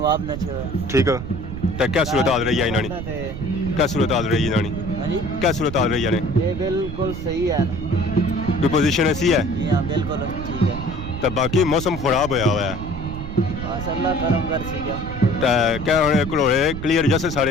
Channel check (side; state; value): right; noise; rumble, 8 dB below the sound